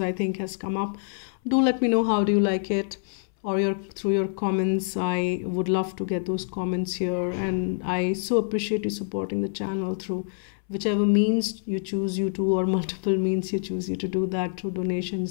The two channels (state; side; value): silent; right; 61 dB below the other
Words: think, has come up. Do let me know how do you like it, or through your comments. I would love to get those comments here, and I so appreciate you supporting the channel through whichever means you choose or multiple means you choose to do that, through